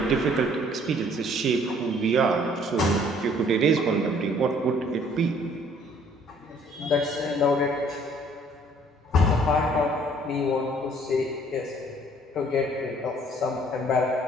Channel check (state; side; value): normal; both; correlation 0.59